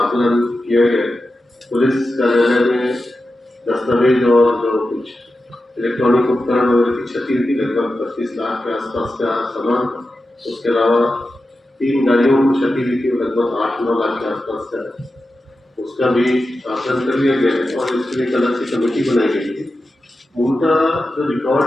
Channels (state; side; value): normal; both; correlation 0.91